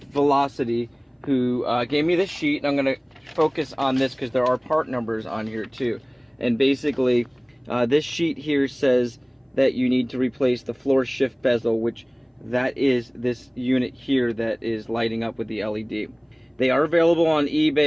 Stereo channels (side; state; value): both; identical; correlation 1.00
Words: Velocity, who gave me this sheet, and I'm going to focus on this because there are part numbers on here too. And basically, this sheet here says that you need to replace the floor shift bezel, which that is this unit here that is lighting up with the LED. They are available on